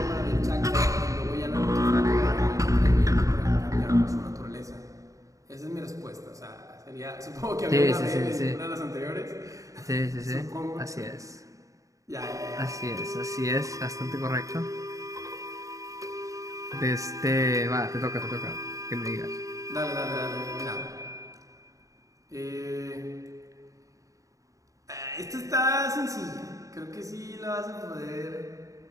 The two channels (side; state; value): left; late; 0.16 ms